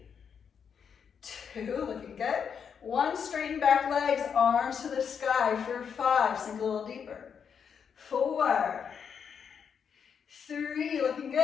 2. Looking good. 1. Straighten back legs, arms to the sky for 5. Sink a little deeper. 4, 3. Looking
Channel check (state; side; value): quieter; right; 7.0 dB